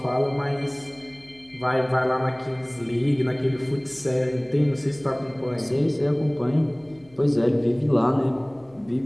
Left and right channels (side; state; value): left; noise; hum, 29 dB below the sound